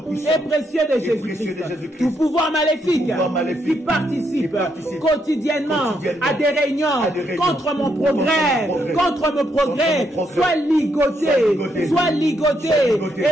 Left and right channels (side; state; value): both; normal; correlation 0.77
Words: et précieux de Jésus-Christ. Tout pouvoir maléfique qui participe quotidiennement à des réunions contre mon progrès, soit ligoté